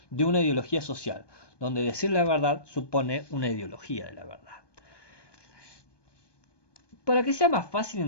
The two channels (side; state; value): right; late; 1.2 ms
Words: de una ideología social, donde decir la verdad supone una ideología de la verdad. Para que sea más fácil